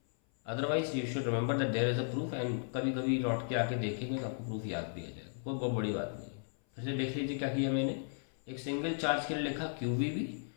otherwise you should remember that there is a proof, and कभी कभी लौट के आके देखेंगे तो आपको प्रूफ याद भी आ जाएगा, कोई बहुत बड़ी बात नहीं है। फिर से देख लीजिए क्या किया मैंने, एक सिंगल चार्ज के लिए लिखा QVB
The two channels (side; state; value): right; silent; 54 dB below the other